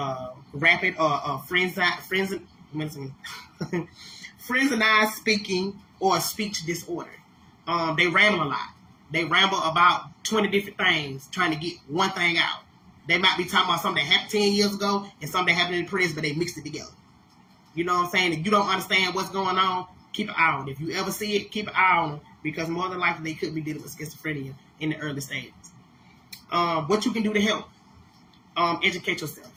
rapid or frenzied speaking or speech disorder. They ramble a lot. They ramble about 20 different things trying to get one thing out. They might be talking about something that happened 10 years ago and something that happened in the prison, but they mixed it together. You know what I'm saying? If you don't understand what's going on, keep an eye on it. If you ever see it, keep an eye on it, because more than likely they could be dealing with schizophrenia in the early stages. What you can do to help, educate yourself.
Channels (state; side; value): identical; both; correlation 1.00